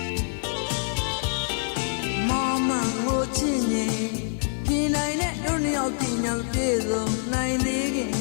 ချစ်ရင်ပြင်နိုင်တဲ့တို့နှစ်ယောက်ပြင်ညာပြေဆုံးနိုင်သေးခင်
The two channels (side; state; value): right; silent; digital silence